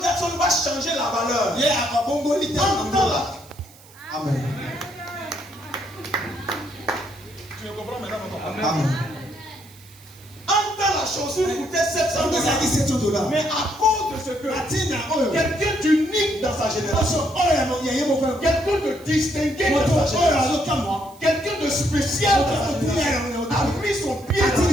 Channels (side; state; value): right; noise; hiss, 24 dB below the sound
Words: va changer la valeur. Amen. Tu me comprends maintenant? Amen. En temps, la chaussure coûtait $700. Mais à cause de ce que quelqu'un d'unique dans sa génération, quelqu'un de distingué dans sa génération, quelqu'un de spécial dans sa génération, a mis son pied